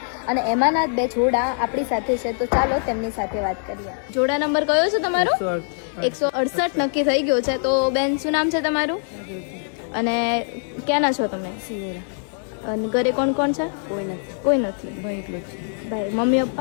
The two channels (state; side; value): silent; right; 60 dB below the other